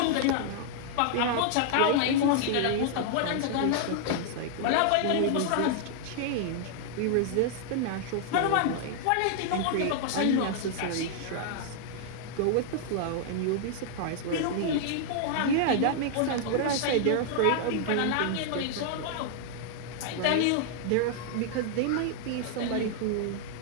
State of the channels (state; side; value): different; both; correlation -0.01